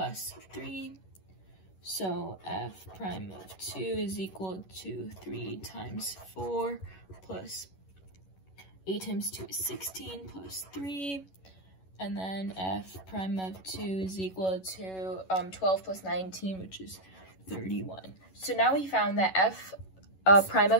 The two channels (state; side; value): late; right; 11 ms